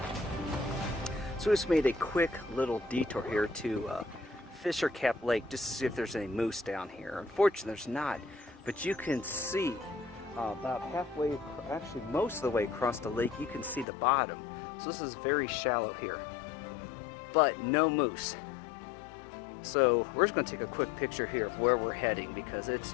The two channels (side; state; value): right; drops out; at 13.9 s